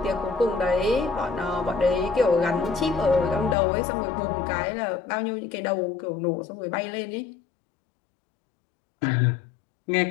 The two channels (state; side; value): drops out; right; at 3.6 s